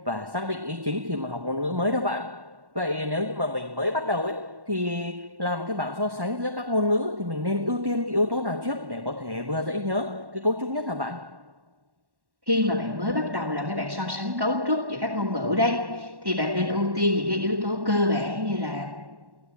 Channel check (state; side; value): late; left; 1.1 ms